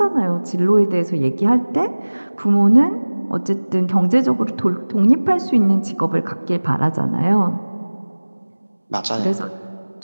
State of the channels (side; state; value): both; inverted; correlation -1.00